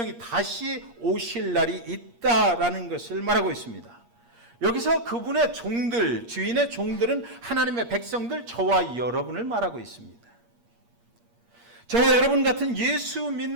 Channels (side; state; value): left; late; 8.5 ms